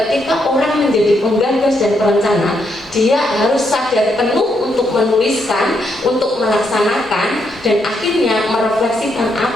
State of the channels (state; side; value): normal; both; correlation 0.78